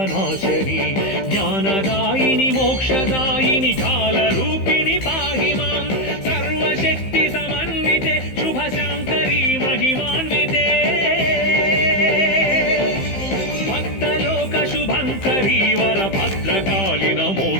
జ్ఞానదాయిని మోక్షదాయిని కాలరూపిణి పాహి మాం. సర్వశక్తి సమన్వితే శుభశాంకరీ మహిమాన్వితే భక్తలోక శుభంకరీ వరభద్రకాళి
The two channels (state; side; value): late; right; 15 ms